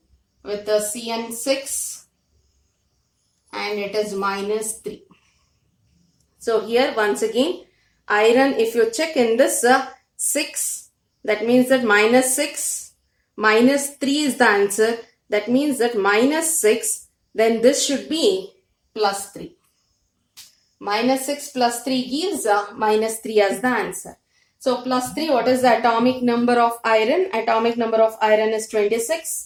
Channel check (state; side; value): identical; both; correlation 1.00